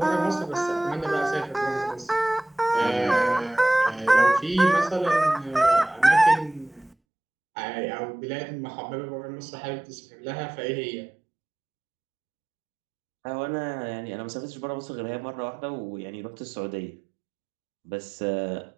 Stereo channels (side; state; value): left; drops out; at 7.0 s